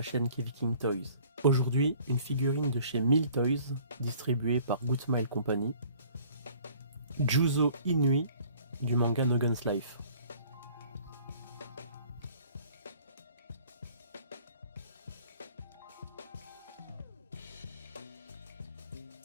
chaîne Keviking Toys. Aujourd'hui, une figurine de chez Mill Toys, distribuée par Good Smile Company. Juzo Inui du manga No Guns Life.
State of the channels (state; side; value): inverted; both; correlation -0.53